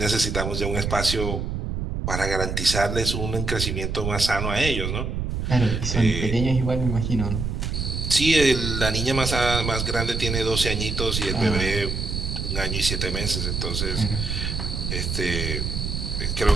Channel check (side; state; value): right; noise; rumble, 2 dB below the sound